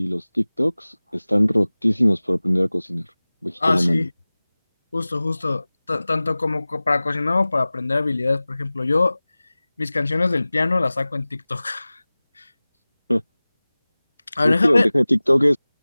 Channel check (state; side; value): inverted; both; correlation -0.99